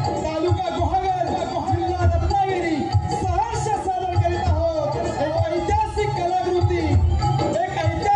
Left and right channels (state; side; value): identical; both; correlation 1.00